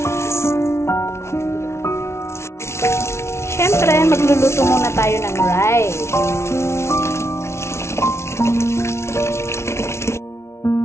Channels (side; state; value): right; late; 0.13 ms